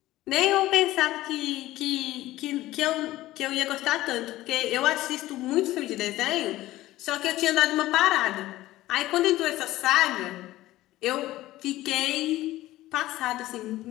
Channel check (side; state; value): right; quieter; 16.3 dB